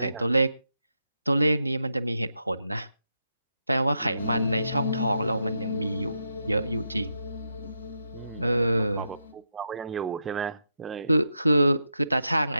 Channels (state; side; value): inverted; both; correlation -0.84